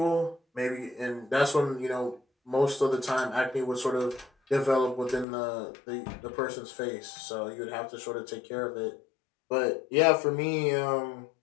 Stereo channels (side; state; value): right; drops out; at 5.2 s